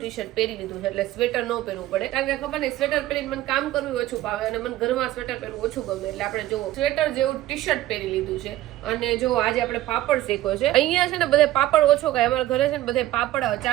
શર્ટ પહેરી લીધું છે, એટલે સ્વેટર ન પહેરવું પડે, કારણ કે ખબર નહીં સ્વેટર પહેરીને મને કામ કરવું ઓછું ભાવે અને મને ઘરમાં સ્વેટર પહેરવું ઓછું ગમે. એટલે આપણે જો સ્વેટર જેવું ટી શર્ટ પહેરી લીધું છે. અને જો આજે આપણે પાપડ શેકો છે. અહીંયા છે ને બધે પાપડ ઓછો ખાય, અમારા ઘરે છે ને બધે પાપડ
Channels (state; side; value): quieter; left; 14.7 dB